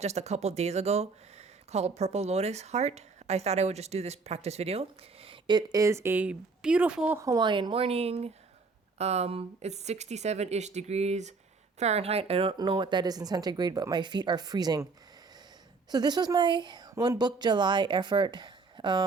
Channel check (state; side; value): quieter; left; 4.3 dB